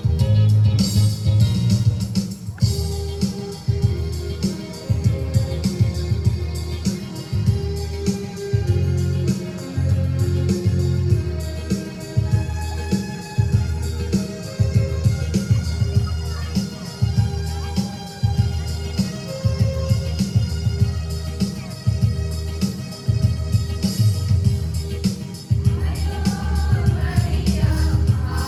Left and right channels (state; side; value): identical; both; correlation 1.00